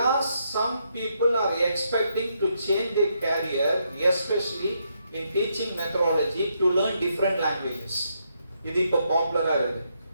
are some people are expecting to change their career, especially in teaching methodology, to learn different languages. இது இப்போ பாப்புலரா இருக்கு.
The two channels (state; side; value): inverted; both; correlation -0.78